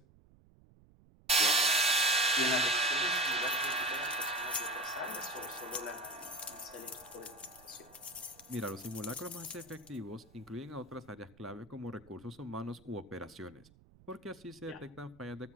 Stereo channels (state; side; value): noise; right; rumble, 26 dB below the sound